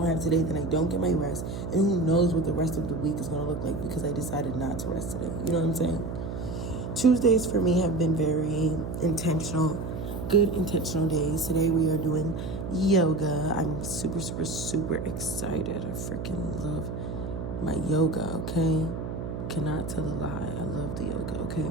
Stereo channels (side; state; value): right; noise; hum, 6 dB below the sound